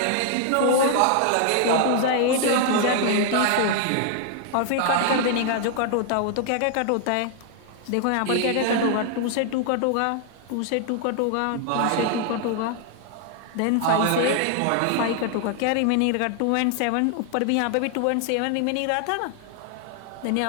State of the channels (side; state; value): both; different; correlation 0.00